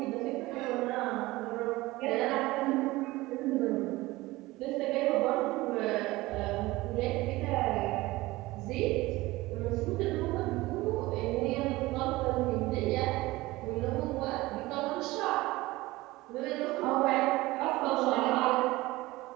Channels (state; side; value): quieter; left; 19.6 dB